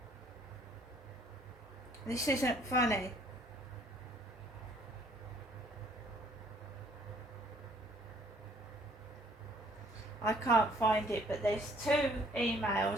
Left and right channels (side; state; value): both; normal; correlation 0.60